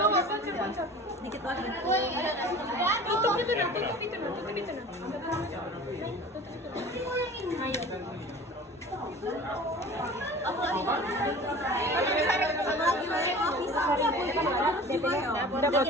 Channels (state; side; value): normal; both; correlation 0.41